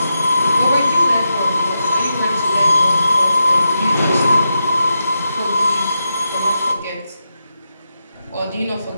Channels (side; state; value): both; inverted; correlation -0.88